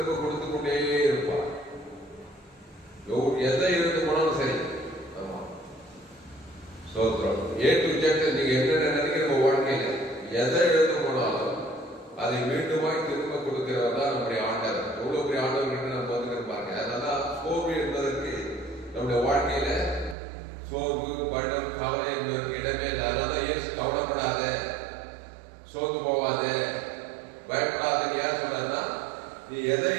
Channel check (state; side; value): drops out; left; at 20.2 s